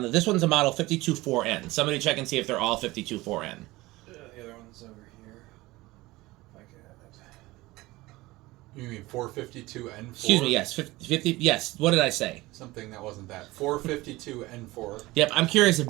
This one's a model 524N. Somebody check and see if they're all 524N. The other one's over here. If I You mean 452 N4? Excuse me, yes, 50, yes. What did I say? Something that wasn't that. 452 N4. Yep, I'm curious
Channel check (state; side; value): quieter; left; 19.9 dB